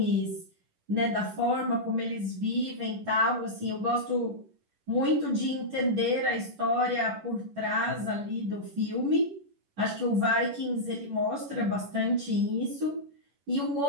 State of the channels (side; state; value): left; late; 11 ms